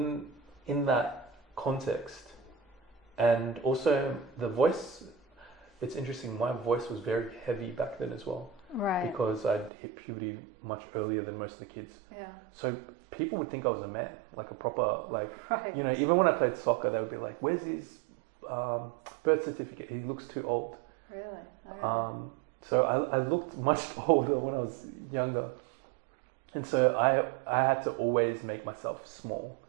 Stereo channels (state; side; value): drops out; left; at 9.7 s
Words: that context, and also the voice. It's interesting. My voice was very heavy back then as well. Right. Because I'd hit puberty much earlier than most of the kids. Yeah. So people would think I was a man, like a proper, like, Right. you know, even when I played soccer, they would be like, where's his birth certificate? He looks too old. Really? Okay. So I looked much older when I was younger. And so I had to always make myself small.